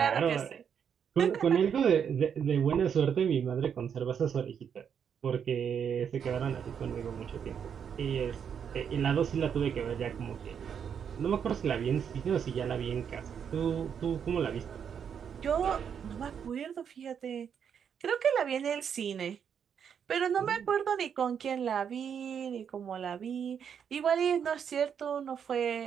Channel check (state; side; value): quieter; left; 7.7 dB